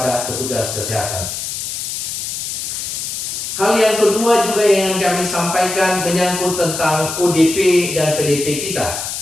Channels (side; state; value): left; noise; hiss, 5 dB below the sound